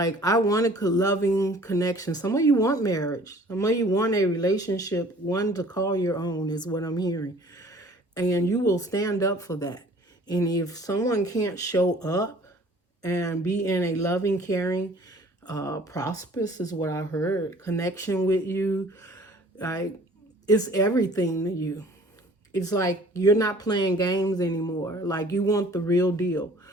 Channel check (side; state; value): both; normal; correlation 0.51